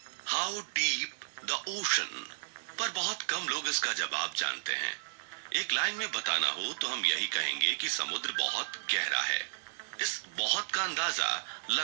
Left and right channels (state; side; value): silent; left; 56 dB below the other